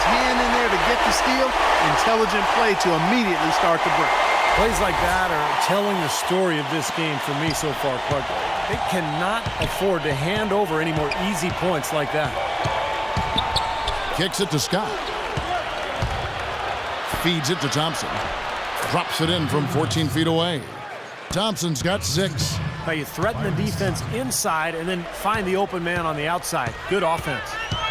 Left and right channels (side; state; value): both; identical; correlation 1.00